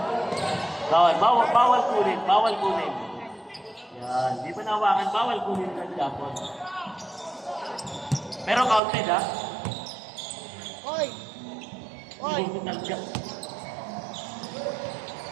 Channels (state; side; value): drops out; left; at 8.8 s